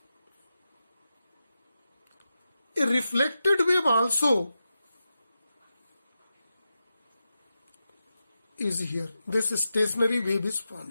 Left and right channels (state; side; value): inverted; both; correlation -0.90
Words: a reflected wave also is here. This stationary wave is